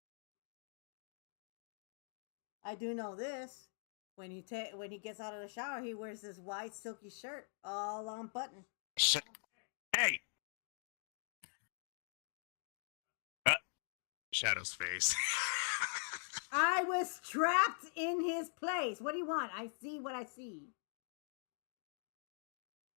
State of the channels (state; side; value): silent; right; digital silence